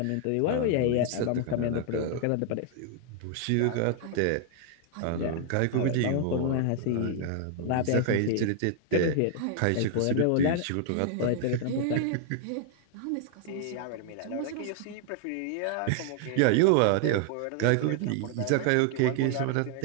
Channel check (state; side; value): different; both; correlation -0.01